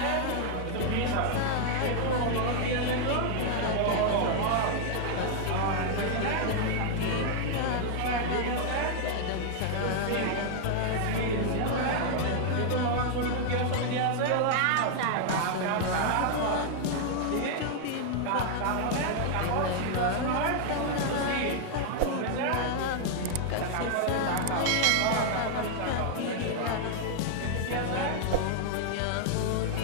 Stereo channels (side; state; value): both; different; correlation 0.00